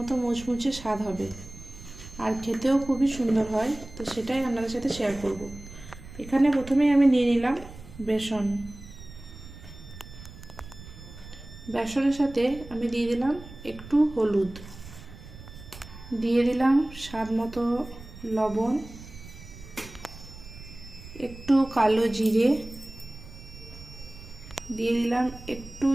মুচমুচে স্বাদ হবে আর খেতেও খুবই সুন্দর হয়। তো সেটাই আপনাদের সাথে শেয়ার করব। এখানে প্রথমেই আমি নিয়ে নিলাম বেসন। বেসনের সাথে আমি দিয়ে দিলাম একটু হলুদ, দিয়ে দিলাম স্বাদ মতো লবণ, একটু কালো জিরে, দিয়ে দিলাম একটু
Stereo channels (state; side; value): noise; right; rumble, 16 dB below the sound